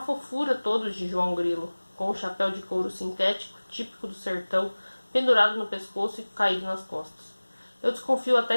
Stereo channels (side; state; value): both; inverted; correlation -1.00